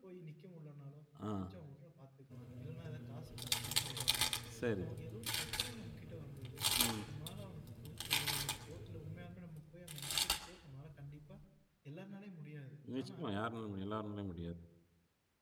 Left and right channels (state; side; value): identical; both; correlation 1.00